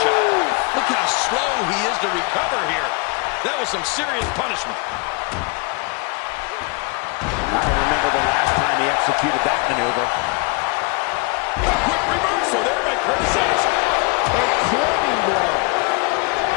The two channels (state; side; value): quieter; right; 31.1 dB